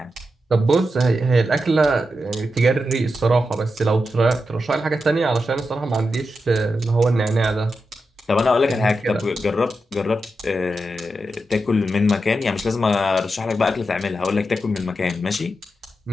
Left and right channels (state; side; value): normal; both; correlation 0.88